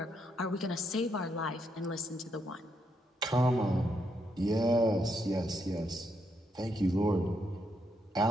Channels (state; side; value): normal; both; correlation 0.78